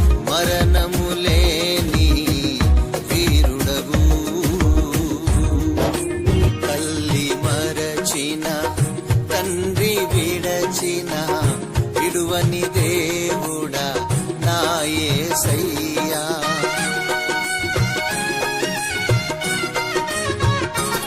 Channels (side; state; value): both; identical; correlation 1.00